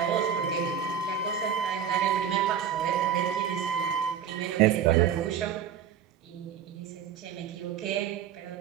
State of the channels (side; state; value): left; quieter; 8.3 dB